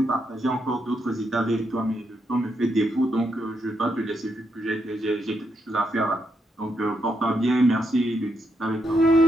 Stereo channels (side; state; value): both; normal; correlation 0.80